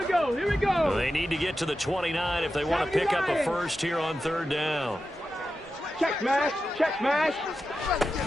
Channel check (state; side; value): normal; both; correlation 0.91